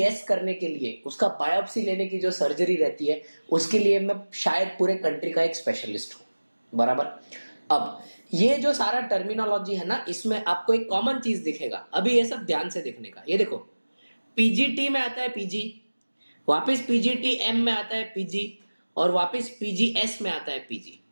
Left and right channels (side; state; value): both; inverted; correlation -1.00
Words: करने के लिए उसका बायोप्सी लेने की जो सर्जरी रहती है उसके लिए मैं शायद पूरे कंट्री का एक स्पेशलिस्ट हूँ, बराबर। अब ये जो सारा टर्मिनोलॉजी है ना, इसमें आपको एक कॉमन चीज़ दिखेगा। अभी ये सब ध्यान से देखने का, ये देखो, पीजीटी में आता है पीजी, वापस पीजीटीएम में आता है पीजी और वापस पीजीएस में आता है पीजी,